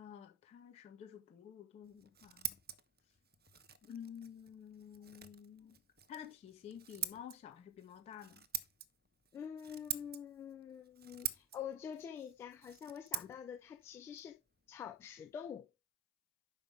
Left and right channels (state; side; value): normal; both; correlation 0.20